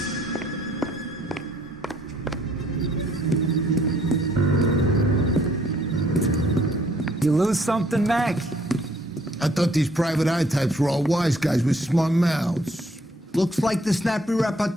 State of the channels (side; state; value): both; normal; correlation 0.63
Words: You lose something, Mac? I thought these private eye types were all wise guys with smart mouths. Looks like the snappy